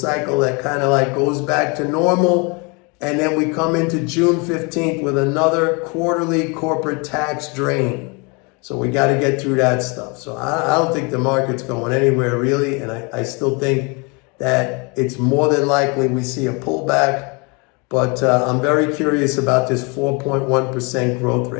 that kind of like goes back to normal. And then we come into June 15th with another quarterly corporate tax drain. So we got to get through that stuff. So I don't think the market's going anywhere really. And I still think that it's more than likely we see a pullback. But I'm very curious about this 4.1% growth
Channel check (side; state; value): right; quieter; 30.6 dB